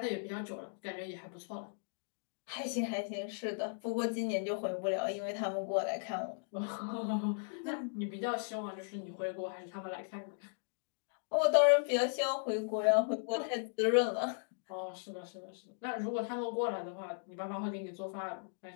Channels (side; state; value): right; silent; digital silence